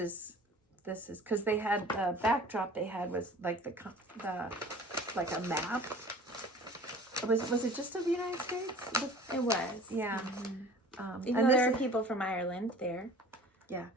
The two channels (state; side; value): normal; both; correlation 0.45